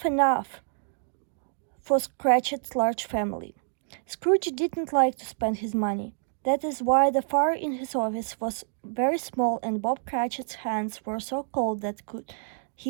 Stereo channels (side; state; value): left; silent; digital silence